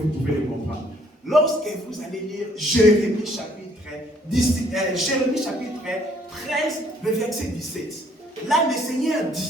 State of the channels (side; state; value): both; normal; correlation 0.64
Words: pouvez le comprendre? Lorsque vous allez lire Jérémie chapitre 13, le verset 17, là le Seigneur